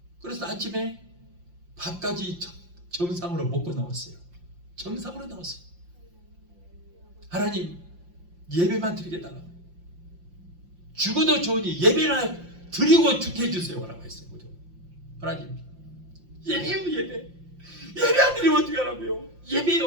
그래서 아침에 밥까지 정상으로 먹고 나왔어요. 정상으로 나왔어요. 하나님 예배만 드리게 해달라고. 죽어도 좋으니 예배나 드리고 죽게 해주세요 라고 했어요. 하나님 예배요 예배. 예배 안 드리면 어떻게 하라고요.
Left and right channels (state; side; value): late; left; 5.7 ms